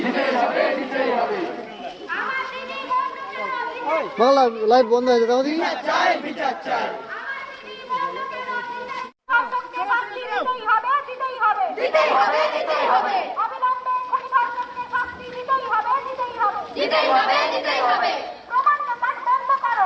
হবে, দিতেই হবে। আমার দিদি বন্ধুরা বাংলা লাইভ বন্ধ হয়েছে তাহলে বিচার চাই, বিচার চাই। ধর্ষকদের ফাঁসি দিতেই হবে, দিতেই হবে, দিতেই হবে, দিতেই হবে। অবিলম্বে খুনি ধর্ষকদের শাস্তি দিতেই হবে, দিতেই হবে, দিতেই হবে, দিতেই হবে। প্রমাণ লোপাট বন্ধ করো,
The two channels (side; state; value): both; identical; correlation 1.00